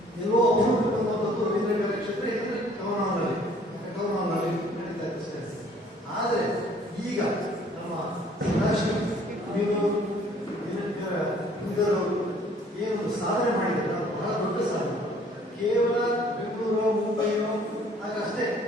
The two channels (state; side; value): normal; both; correlation 0.57